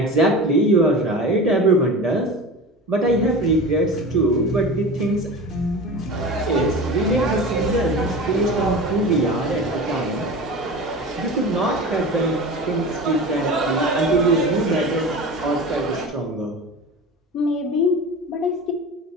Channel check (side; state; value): both; normal; correlation 0.32